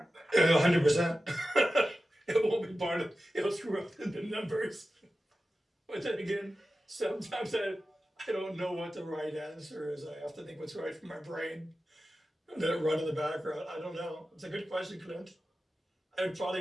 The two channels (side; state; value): both; normal; correlation 0.94